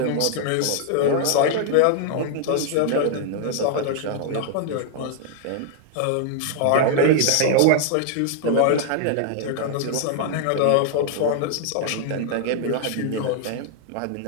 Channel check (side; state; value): both; different; correlation -0.01